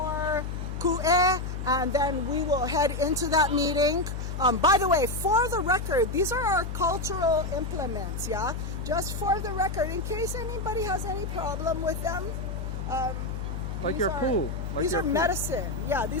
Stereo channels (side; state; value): left; noise; hum, 5 dB below the sound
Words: ku'e, and then we will head into that meeting. By the way, for the record, these are our cultural implements, yeah? Just for the record, in case anybody has any problem with them. Like your pool. These are medicine. Yeah,